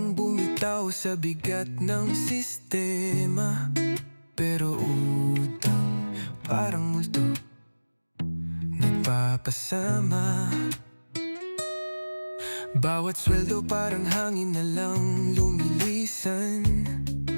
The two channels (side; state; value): both; inverted; correlation -1.00